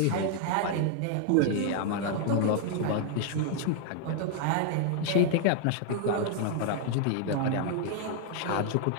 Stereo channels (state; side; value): different; both; correlation 0.00